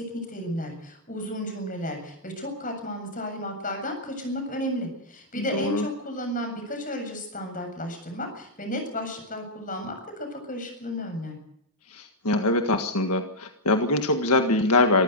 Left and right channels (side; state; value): both; normal; correlation -0.08